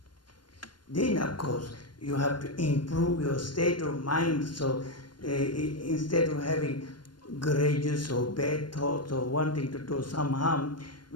Then, of course, you have to improve your state of mind, so instead of having grudges or bad thoughts or wanting to do some harm,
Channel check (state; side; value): late; right; 0.72 ms